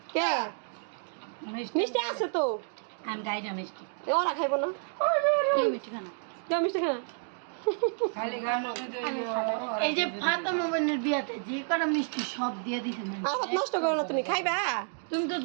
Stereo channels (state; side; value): silent; left; 58 dB below the other